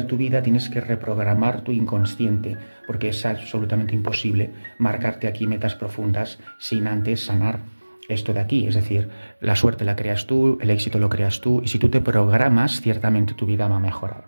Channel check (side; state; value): both; inverted; correlation -1.00